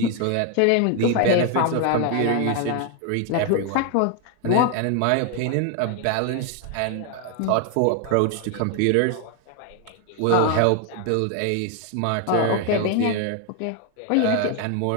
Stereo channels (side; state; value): both; different; correlation 0.01